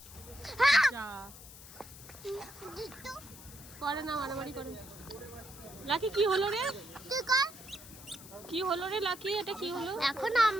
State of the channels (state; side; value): noise; left; hiss, 17 dB below the sound